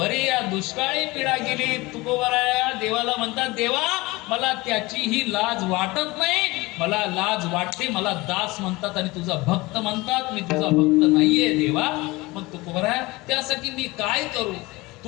या दुष्काळी पिढा गेली. तुकोबाराया देवाला म्हणतात, देवा मला त्याचीही लाज वाटत नाही, मला लाज वाटते. मला दास म्हणतात आणि तुझा भक्त म्हणतात, मी तुझा भक्त नाहीये देवा. मग तुकोबाराया त्यासाठी मी काय करू?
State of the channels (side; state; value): right; quieter; 22.1 dB